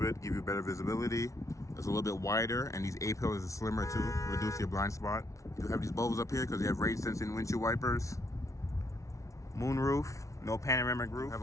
give you better visibility. It's a little bit wider, and these A-pillars are slimmer too, reduce your blind spot. You have these bubbles up here because you have rain sensing windshield wipers. Moon roof, no panoramic roof. Have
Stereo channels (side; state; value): right; late; 0.15 ms